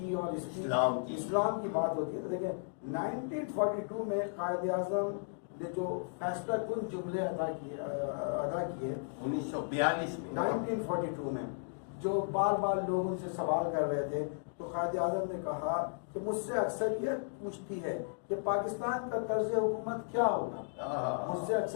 اور اسلام کی بات ہوتی ہے، تو دیکھیں 1942 میں قائد اعظم نے جو فیصلہ کن جملے ادا کیے 1942 میں، جو بار بار لوگ ان سے سوال کر رہے تھے، تو قائد اعظم نے کہا کہ مجھ سے اکثریت پوچھتی ہے کہ پاکستان کا طرز حکومت کیا ہوگا. مجھ سے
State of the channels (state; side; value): silent; right; digital silence